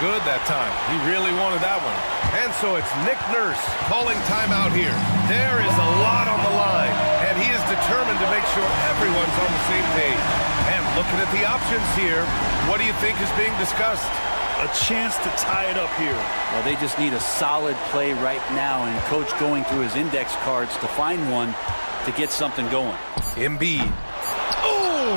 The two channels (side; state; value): both; inverted; correlation -1.00